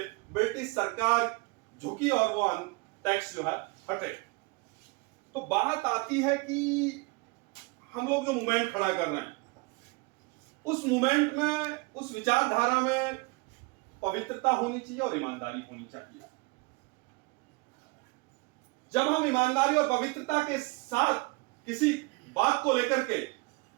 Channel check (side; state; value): left; quieter; 27.4 dB